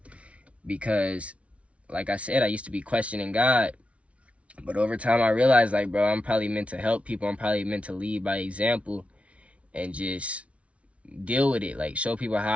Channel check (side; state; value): left; late; 0.063 ms